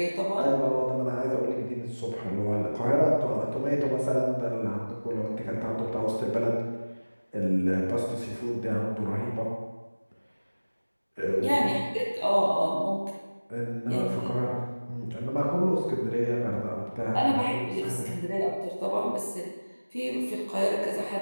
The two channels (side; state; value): both; inverted; correlation -1.00